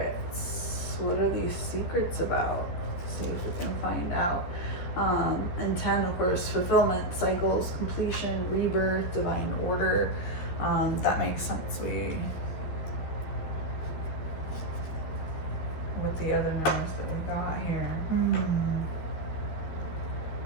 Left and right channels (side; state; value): right; late; 12 ms